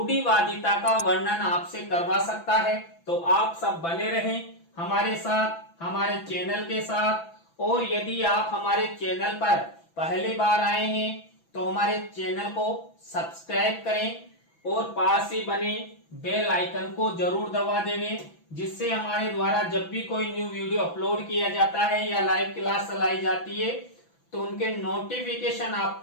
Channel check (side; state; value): right; late; 6.0 ms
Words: का वर्णन आपसे करवा सकता है। तो आप सब बने रहें हमारे साथ, हमारे चैनल के साथ। और यदि आप हमारे चैनल पर पहली बार आए हैं तो हमारे चैनल को सब्सक्राइब करें और पास ही बने बेल आइकन को जरूर दबा देवें, जिससे हमारे द्वारा जब भी कोई न्यू वीडियो अपलोड किया जाता है या लाइव क्लास चलाई जाती है तो उनके नोटिफिकेशन